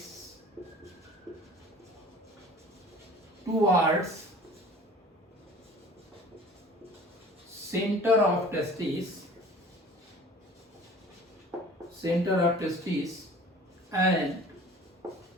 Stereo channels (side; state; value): both; normal; correlation 0.46